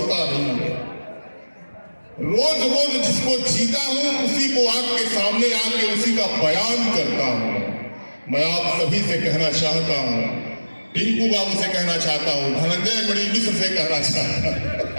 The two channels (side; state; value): both; inverted; correlation -1.00